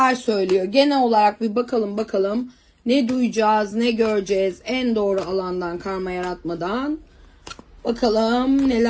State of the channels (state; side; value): identical; both; correlation 1.00